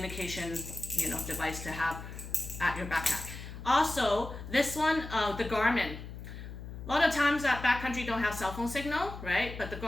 you know, device to have at your backpack. Also, this one, the Garmin. A lot of times that backcountry don't have cell phone signal, right? But the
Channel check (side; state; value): left; noise; hum, 10 dB below the sound